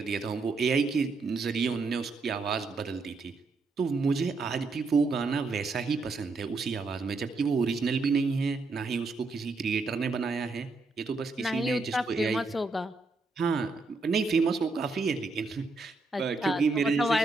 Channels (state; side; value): quieter; left; 3.6 dB